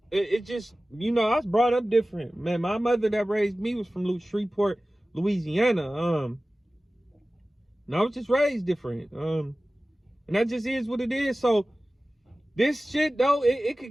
It just, you know, I was brought up different. Man, my mother that raised me was from Shreveport, Louisiana. And I was just raised different. And that just is what it is. So this shit, though, it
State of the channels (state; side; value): normal; both; correlation 0.97